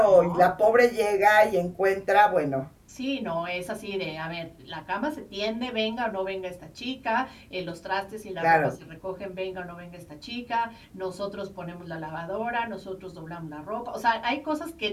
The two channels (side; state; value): both; identical; correlation 1.00